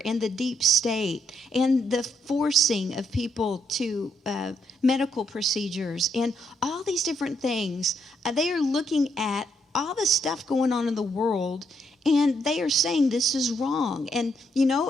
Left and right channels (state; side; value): normal; both; correlation 0.75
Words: and the deep state and the forcing of people to medical procedures and all these different things. They are looking at all the stuff going on in the world, and they are saying this is wrong. And,